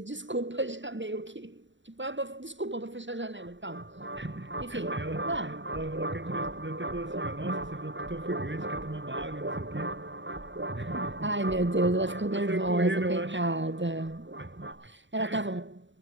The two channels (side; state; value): left; late; 0.54 ms